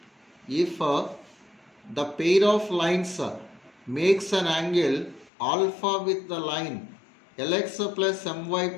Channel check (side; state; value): right; drops out; at 5.3 s